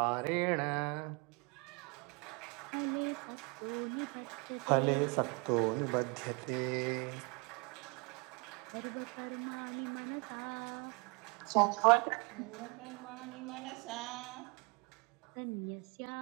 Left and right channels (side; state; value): left; quieter; 31.5 dB